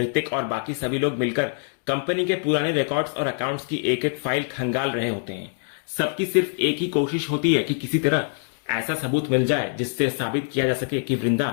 और बाकी सभी लोग मिलकर कंपनी के पुराने रिकॉर्ड्स और अकाउंट्स की एक एक फाइल खंगाल रहे होते हैं। सबकी सिर्फ एक ही कोशिश होती है कि किसी तरह ऐसा सबूत मिल जाए जिससे साबित किया जा सके कि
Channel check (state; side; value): silent; right; digital silence